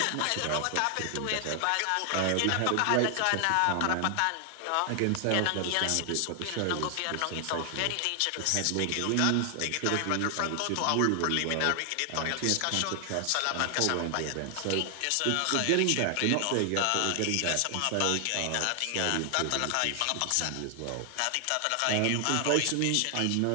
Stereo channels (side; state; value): both; different; correlation 0.00